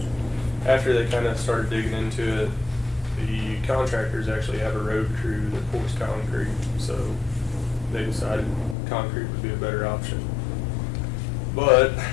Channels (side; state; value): right; drops out; at 8.8 s